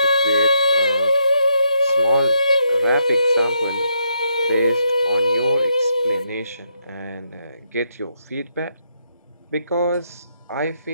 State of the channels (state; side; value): inverted; both; correlation -0.78